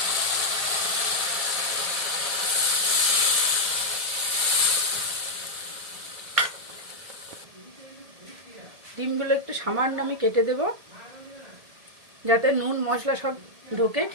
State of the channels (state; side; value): late; left; 1.7 ms